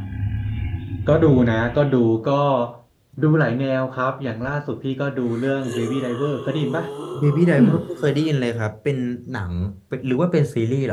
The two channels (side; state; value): both; identical; correlation 1.00